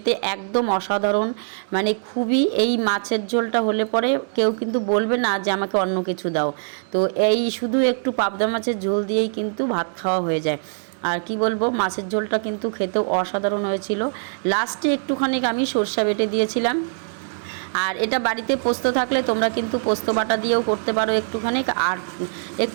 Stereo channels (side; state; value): left; silent; digital silence